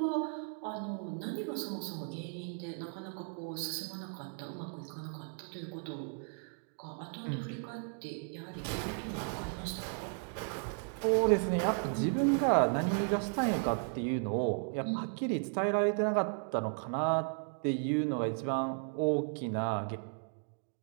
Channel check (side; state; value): left; silent; 54 dB below the other